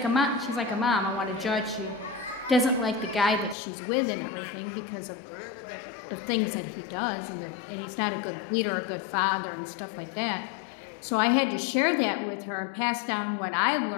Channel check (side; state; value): right; drops out; at 3.6 s